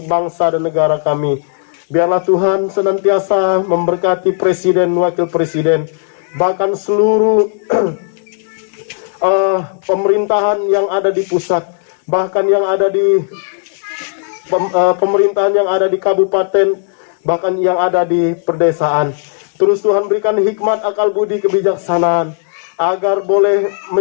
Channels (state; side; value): silent; right; digital silence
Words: bangsa dan negara kami. Biarlah Tuhan senantiasa memberkati presiden, wakil presiden, bahkan seluruh pemerintahan yang ada di pusat, bahkan yang ada di pemerintahan yang ada di kabupaten, bahkan yang ada di perdesaan. Terus Tuhan berikan hikmat, akal budi, kebijaksanaan, agar boleh